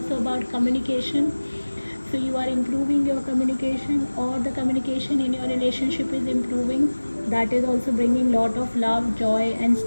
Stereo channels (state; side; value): inverted; both; correlation -1.00